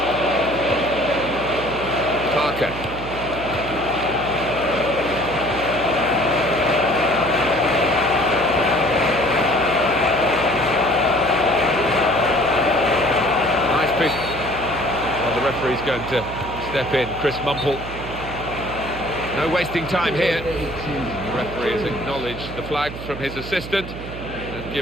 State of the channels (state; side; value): noise; right; hum, 10 dB below the sound